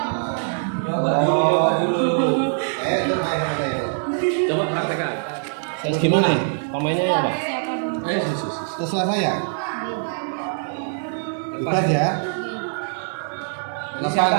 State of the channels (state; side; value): silent; left; 64 dB below the other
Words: Coba dulu. Itu main apa itu? Coba praktekkan. Terus gimana? Pemainnya ya, Pak? Terserah saya. Bebas ya. 8